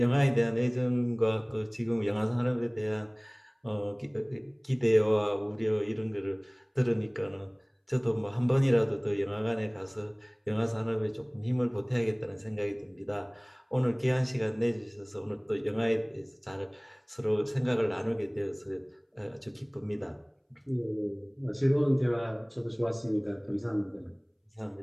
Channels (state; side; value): identical; both; correlation 1.00